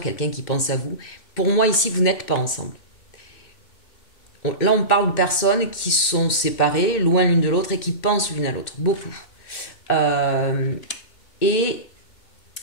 qui pense à vous. Pour moi, ici, vous n'êtes pas ensemble. Là, on parle de personnes qui sont séparées, loin l'une de l'autre et qui pensent l'une à l'autre. Beaucoup. Et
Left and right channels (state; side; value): late; right; 2.6 ms